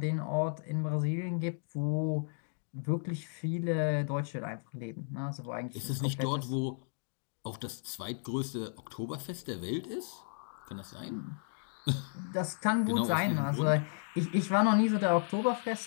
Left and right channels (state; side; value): silent; right; digital silence